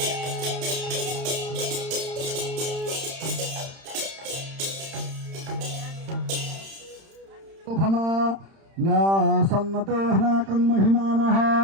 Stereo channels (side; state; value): left; late; 31 ms